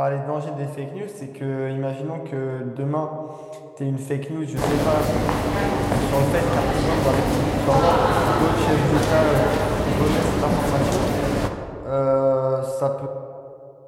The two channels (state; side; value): identical; both; correlation 1.00